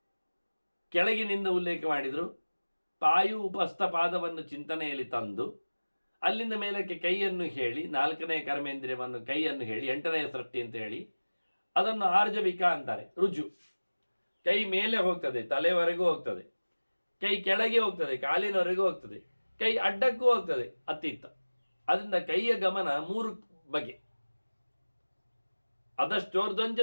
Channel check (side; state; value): both; inverted; correlation -1.00